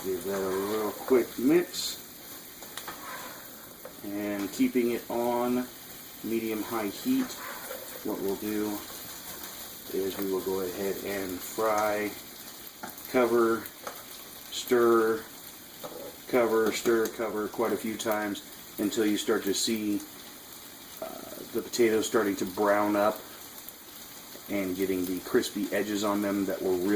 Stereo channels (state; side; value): identical; both; correlation 1.00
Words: Give that a real quick mix, and keeping it on medium-high heat, what we'll do is we will go ahead and fry, cover, stir, cover quite a few times until you start to see the potatoes starting to brown up and getting the crispy edges on them that we're